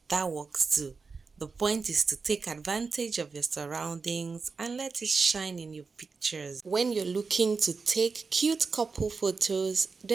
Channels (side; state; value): left; quieter; 4.7 dB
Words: that works too. The point is to take advantage of your surroundings and let it shine in your pictures. When you're looking to take cute couple photos,